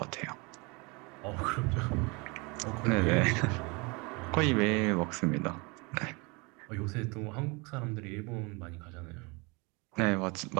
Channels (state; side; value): quieter; left; 28.4 dB